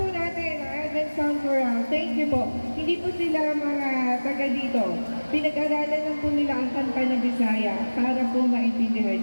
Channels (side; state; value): both; inverted; correlation -1.00